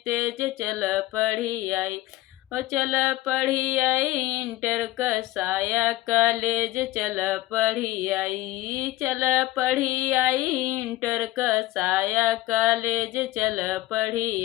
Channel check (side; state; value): right; quieter; 17.0 dB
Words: चल पढ़ी आई ओ चल पढ़ी आई, इंटर कसाया कॉलेज चल पढ़ी आई, चल पढ़ी आई, इंटर कसाया कॉलेज चल